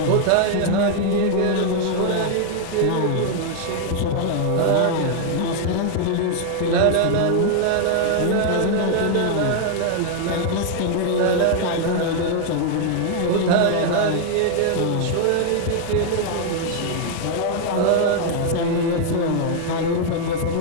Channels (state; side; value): different; both; correlation 0.00